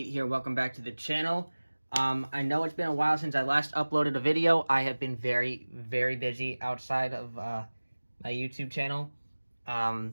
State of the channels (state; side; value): inverted; both; correlation -1.00